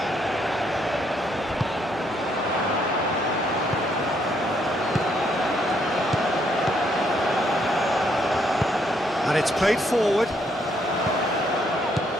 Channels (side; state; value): both; normal; correlation 0.72